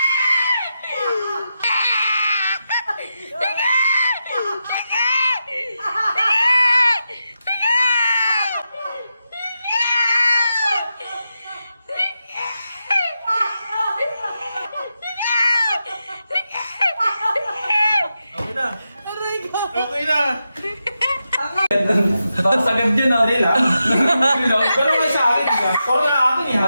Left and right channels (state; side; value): inverted; both; correlation -0.88